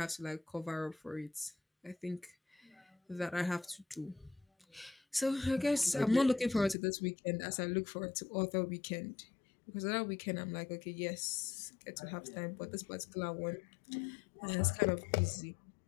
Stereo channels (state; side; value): drops out; right; at 6.8 s